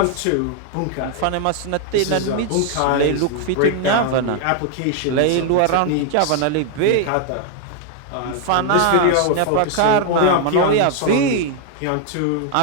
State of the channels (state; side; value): different; both; correlation 0.00